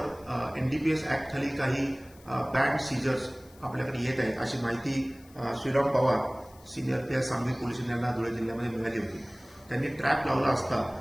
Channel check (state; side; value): noise; left; hiss, 26 dB below the sound